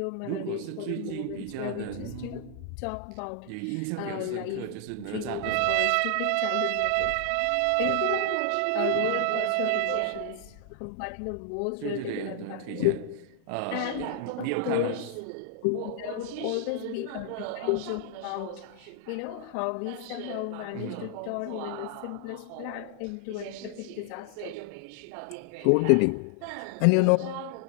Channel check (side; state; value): both; different; correlation 0.00